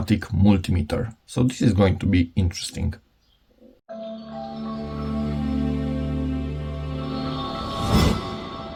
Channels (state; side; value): identical; both; correlation 1.00